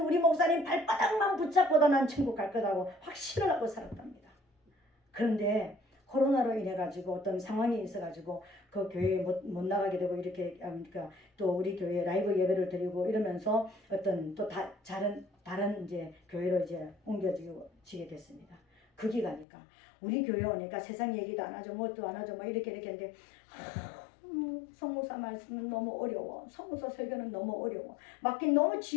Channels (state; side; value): drops out; right; at 19.5 s